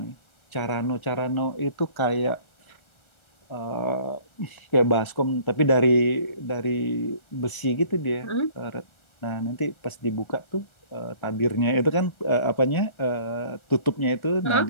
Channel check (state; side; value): late; right; 1.3 ms